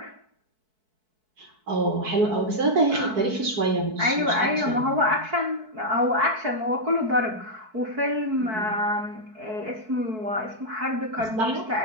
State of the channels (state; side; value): late; left; 4.6 ms